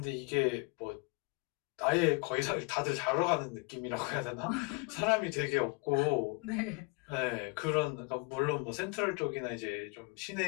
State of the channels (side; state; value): right; quieter; 30.0 dB